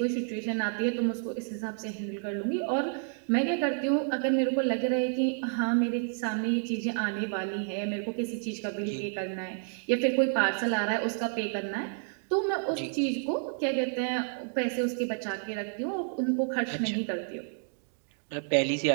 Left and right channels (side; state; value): left; silent; 58 dB below the other